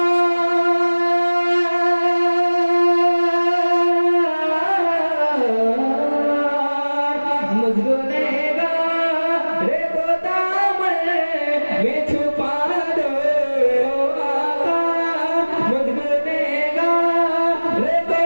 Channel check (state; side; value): inverted; both; correlation -1.00